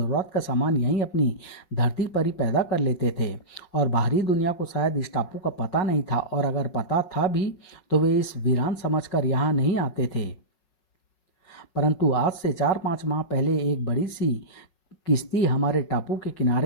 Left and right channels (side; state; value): right; late; 5.4 ms